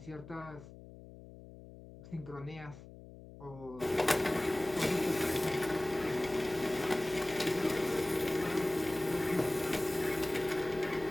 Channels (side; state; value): left; noise; hum, 17 dB below the sound